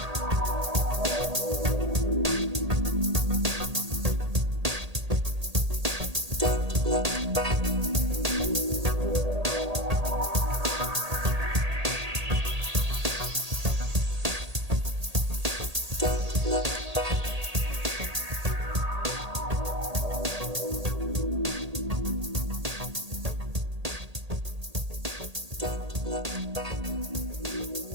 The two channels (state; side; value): late; left; 1.8 ms